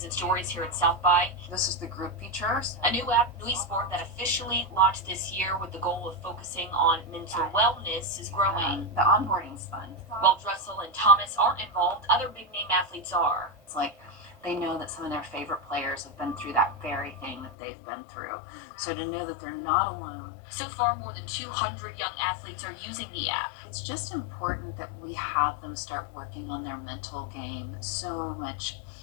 and stories here at South by. This is the group features. A new app, Nui Sport, that officially launched this year with the goal of focusing on mental wellness is growing. The onboarding's fun. While Dressel and Thomas aren't involved, other big-name athletes are. It's like they know that some of their favorite players have been through that very thing that they've been through. So to know that they're not alone. So far, more than 200 young athletes are using the app. It's just important that we have them start working on their mental game so much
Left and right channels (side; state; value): right; drops out; at 17.5 s